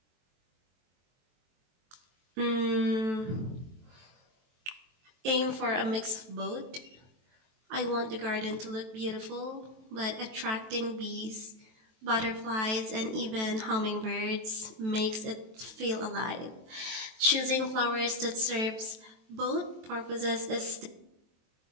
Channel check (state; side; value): late; left; 23 ms